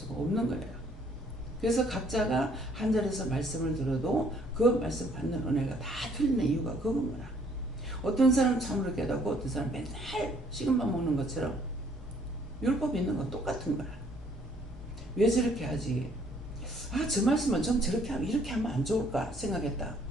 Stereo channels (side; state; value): both; normal; correlation 0.63